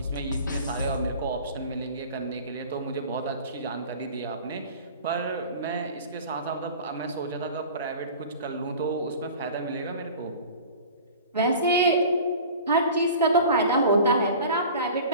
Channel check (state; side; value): inverted; both; correlation -0.40